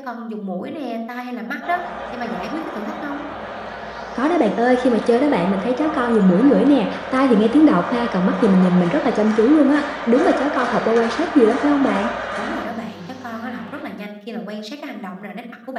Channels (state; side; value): identical; both; correlation 1.00